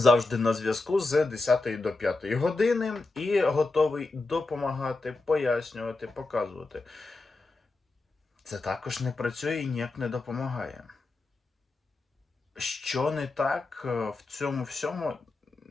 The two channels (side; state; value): right; quieter; 3.4 dB